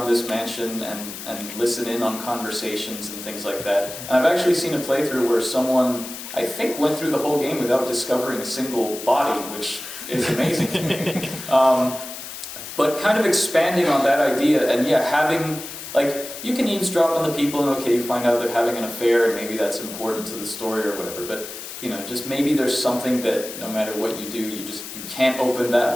this mansion and listen in on conversations and things like that. And I've actually seen a playthrough where someone, I think, went through the whole game without discovering a single body, which is amazing. But kind of expanding on that idea, and yeah, having, like, you can eavesdrop on the people and okay, you find out they're having an affair and maybe that's important to the story or whatever, but you know, just maybe there's something that no matter what you do, you can't open that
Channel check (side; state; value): left; noise; hiss, 10 dB below the sound